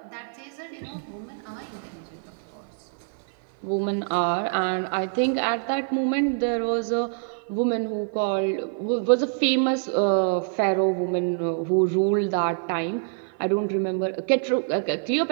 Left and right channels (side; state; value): left; silent; 56 dB below the other